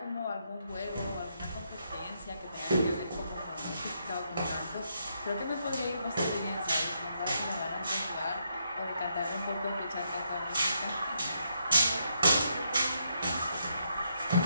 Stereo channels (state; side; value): inverted; both; correlation -0.78